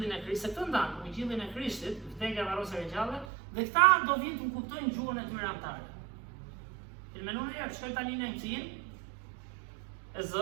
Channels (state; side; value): drops out; left; at 3.2 s